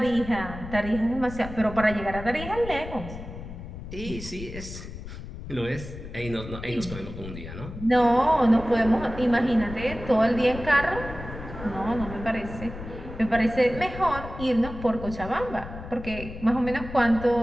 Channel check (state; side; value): noise; left; rumble, 11 dB below the sound